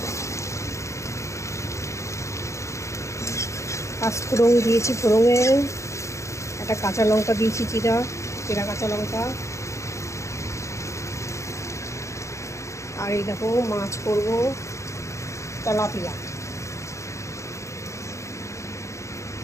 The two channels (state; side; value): late; right; 0.14 ms